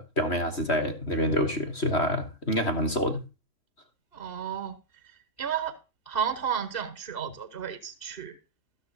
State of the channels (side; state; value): right; late; 3.1 ms